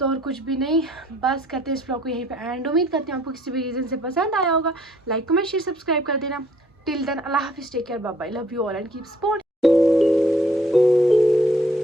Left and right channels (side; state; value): both; normal; correlation 0.62